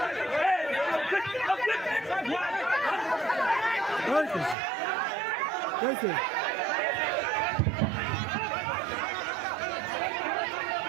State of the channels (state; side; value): drops out; left; at 4.5 s